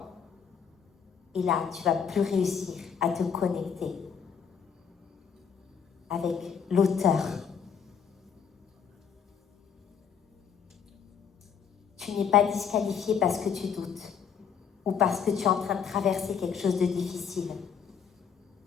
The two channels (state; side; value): quieter; right; 7.2 dB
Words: Et là, tu vas plus réussir à te connecter avec l'auteur. Tu n'es pas disqualifié parce que tu doutes ou parce que tu es en train de traverser quelque chose de difficile.